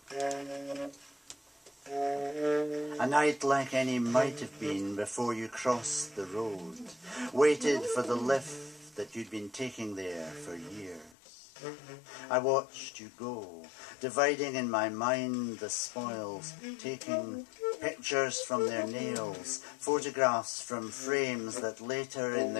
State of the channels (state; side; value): drops out; right; at 11.1 s